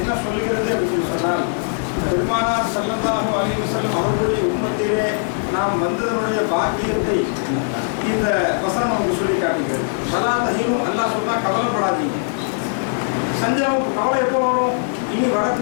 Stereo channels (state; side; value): silent; right; digital silence